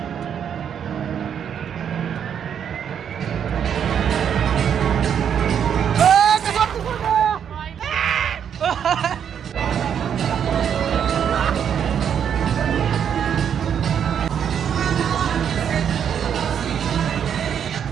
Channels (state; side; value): quieter; left; 8.3 dB